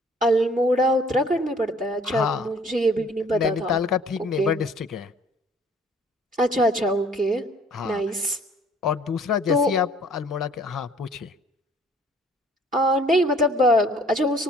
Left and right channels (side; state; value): both; normal; correlation 0.56